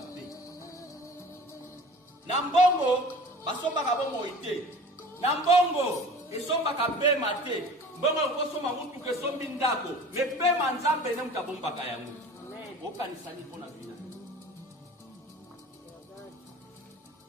Nambongo basombaka bomoi te. Nambongo esombaka pema te. Mbongo okosomba mutuka esombi ndako. Me pema Nzambe ne mutabombaka yango. Okanisani mpona vina.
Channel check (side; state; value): both; normal; correlation 0.41